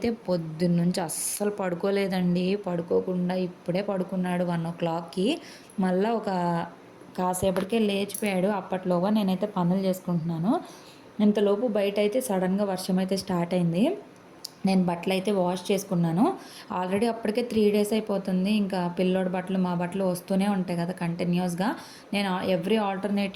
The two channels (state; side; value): identical; both; correlation 1.00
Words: పొద్దున్న నుంచి అస్సలు పడుకోలేదండి. పడుకోకుండా ఇప్పుడే పడుకున్నాడు 1 o'clockకి. మళ్ళీ కాసేపటికే లేచిపోయాడు. అప్పట్లోగా నేనైతే పనులు చేసుకుంటున్నాను. ఇంతలోపు బయట అయితే సడన్గా వర్షం అయితే స్టార్ట్ అయింది. నేను బట్టలు అయితే వాష్ చేసుకున్నాను. ఆల్రెడీ అప్పటికే 3 days అయిపోతుంది. ఇంకా పిల్లోడి బట్టలు మా బట్టలు వస్తూనే ఉంటాయి కదా కంటిన్యూస్గా. నేను ఎవ్రీ